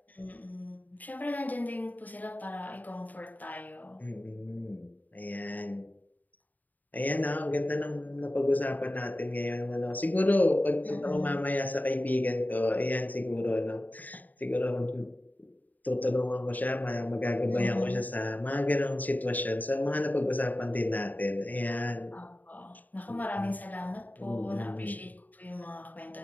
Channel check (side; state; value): right; late; 0.082 ms